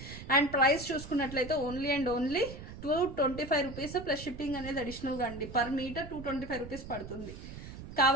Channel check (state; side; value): noise; right; rumble, 12 dB below the sound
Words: అండ్ ప్రైస్ చూసుకున్నట్లయితే only and only 225 rupees plus shipping అనేది అడిషనల్గా అండి. పర్ మీటర్ 225 రూపీస్ పడుతుంది.